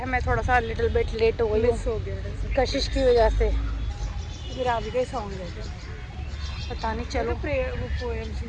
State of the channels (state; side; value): identical; both; correlation 1.00